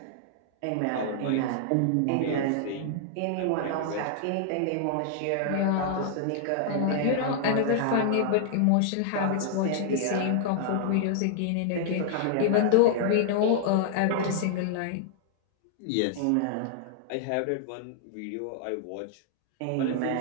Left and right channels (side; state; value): both; different; correlation -0.01